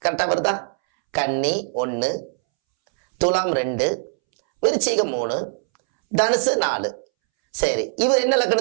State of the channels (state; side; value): silent; left; 65 dB below the other